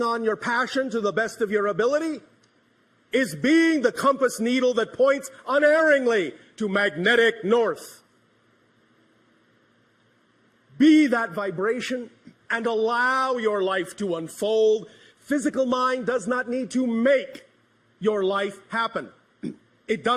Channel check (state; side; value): identical; both; correlation 1.00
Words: on your passion to the best of your ability is being the compass needle that points unerringly to magnetic north. Be that vibration and allow your life to unfold. Physical mind does not need to make your life happen. It